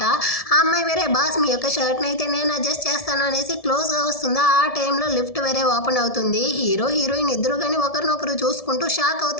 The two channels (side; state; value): right; late; 1.7 ms